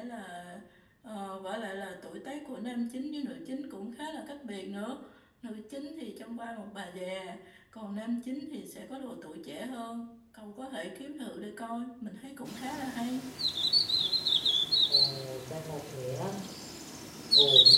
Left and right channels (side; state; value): both; identical; correlation 1.00